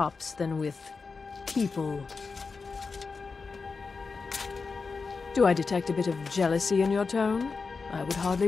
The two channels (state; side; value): quieter; right; 4.6 dB